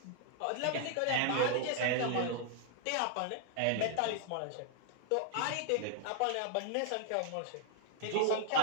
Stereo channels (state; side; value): different; both; correlation 0.00